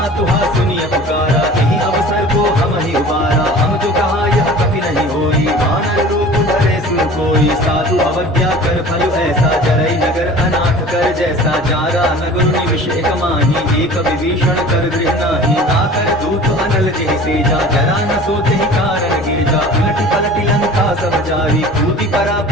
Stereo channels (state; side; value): normal; both; correlation 0.42